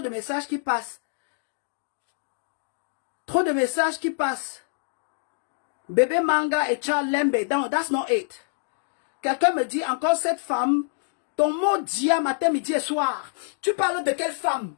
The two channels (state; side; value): silent; right; digital silence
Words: messages qui passent. Trop de messages qui passent. Bébé Manga et Charles Lembe. Non, that's not it. Quelqu'un me dit encore cette femme, ton mot dit à matin, midi et soir. Tu parles de quelle femme?